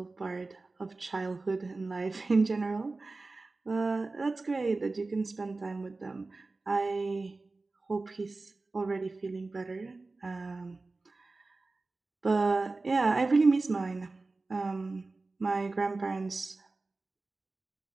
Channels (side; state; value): left; quieter; 3.5 dB